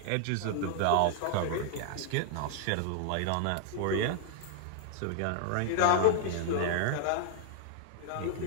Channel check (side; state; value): both; different; correlation 0.00